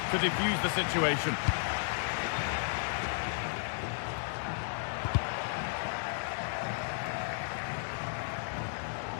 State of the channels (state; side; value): silent; right; digital silence